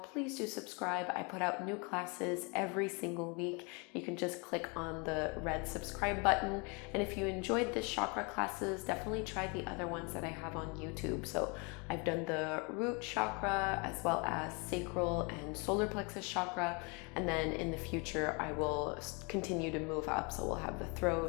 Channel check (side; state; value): right; quieter; 31.4 dB